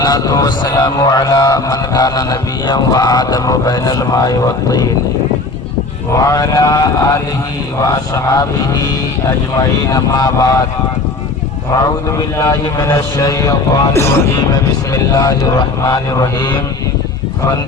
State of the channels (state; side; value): quieter; right; 3.4 dB